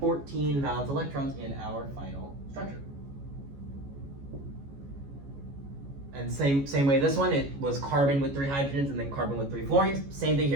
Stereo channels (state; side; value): late; left; 14 ms